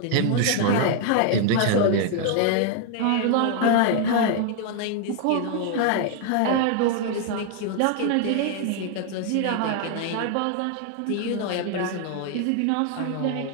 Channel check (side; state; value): both; different; correlation 0.00